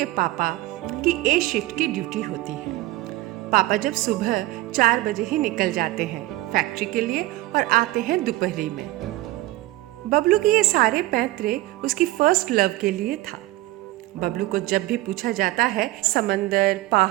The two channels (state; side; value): quieter; left; 17.8 dB